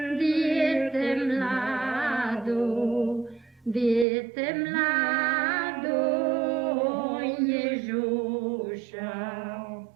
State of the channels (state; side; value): drops out; left; at 4.0 s